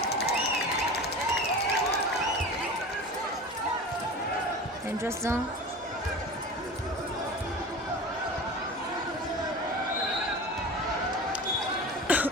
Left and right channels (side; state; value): both; normal; correlation 0.33